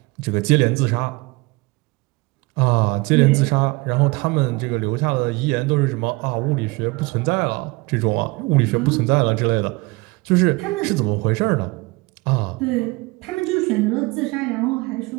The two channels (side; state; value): left; quieter; 24.7 dB